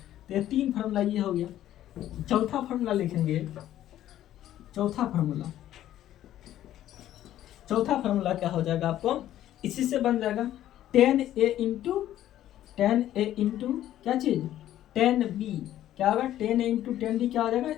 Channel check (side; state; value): right; quieter; 12.6 dB